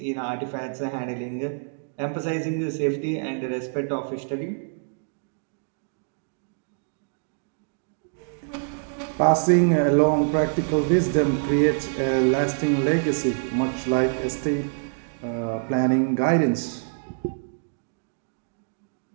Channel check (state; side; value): silent; left; digital silence